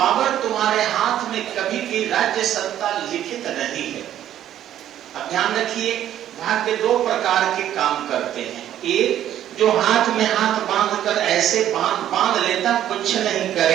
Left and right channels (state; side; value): quieter; left; 11.4 dB